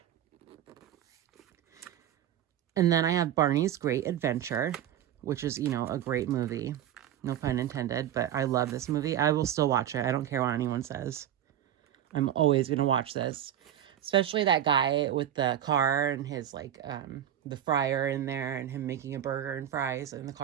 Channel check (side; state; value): left; quieter; 10.9 dB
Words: And then I have Barney's Great Adventure, which is, you know, a great movie. No pun intended, but I love this movie. I will still watch it. I don't care what anyone says. I'm always going to watch this. Especially that guy with the car and his, like, the fryer in there and him making a burger and fries in the